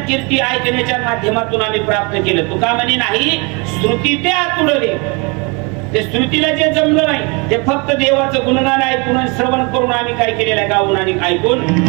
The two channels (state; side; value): quieter; left; 30.2 dB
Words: कीर्ती ऐकण्याच्या माध्यमातून आम्ही प्राप्त केलं. तुका म्हणे नाही, श्रुती ते आतुडले. ते श्रुतीला जे जमलं नाही ते फक्त देवाचं गुणगान ऐकून श्रवण करून आम्ही काय केलेलं आहे, गाऊन आणि ऐकून